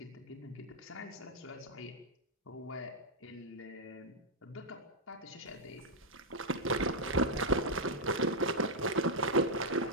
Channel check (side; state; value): both; normal; correlation -0.05